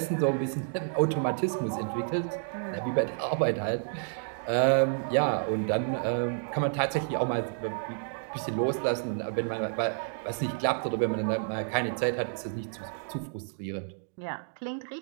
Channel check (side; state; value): left; silent; digital silence